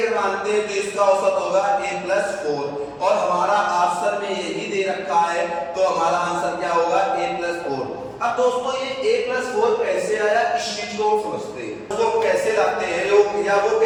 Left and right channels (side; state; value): both; identical; correlation 1.00